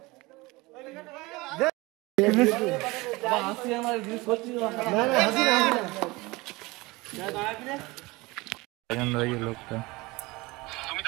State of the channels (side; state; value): left; quieter; 22.7 dB